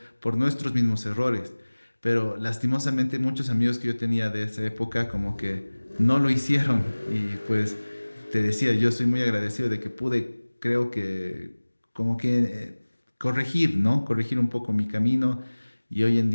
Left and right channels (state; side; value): inverted; both; correlation -1.00